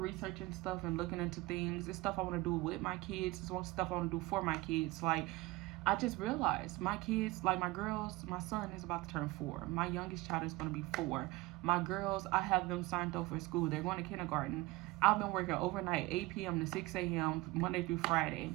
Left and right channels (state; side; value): quieter; left; 20.3 dB